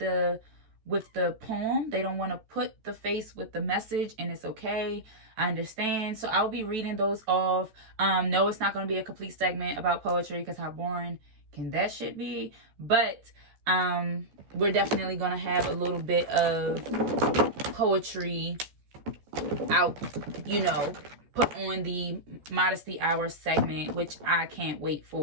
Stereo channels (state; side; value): late; left; 14 ms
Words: poem. They don't want to put the face with the message, and it's okay. I understand. So I'll be reading those off. No, it's not going to be a complete segment about poetry because how boring can that shit be? But we're definitely going to have a little bit of poetry out, you know, put on the Modesty Hour segment, which I can't wait